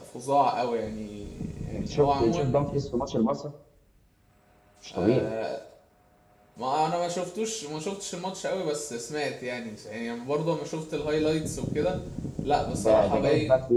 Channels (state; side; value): identical; both; correlation 1.00